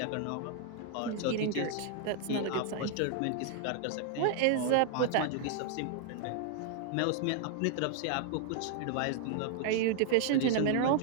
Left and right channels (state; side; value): different; both; correlation 0.00